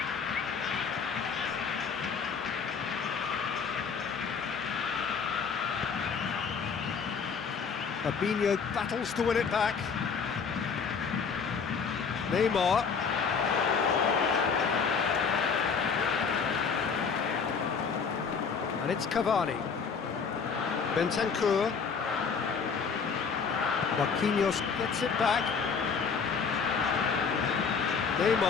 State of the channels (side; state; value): right; quieter; 5.8 dB